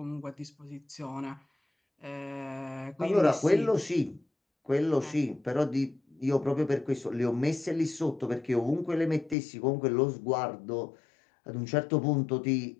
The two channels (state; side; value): drops out; right; at 9.3 s